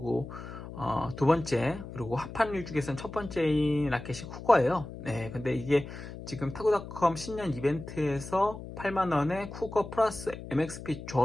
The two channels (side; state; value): left; noise; hum, 11 dB below the sound